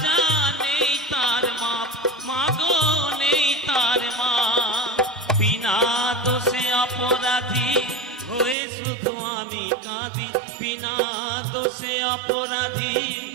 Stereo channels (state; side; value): drops out; left; at 8.6 s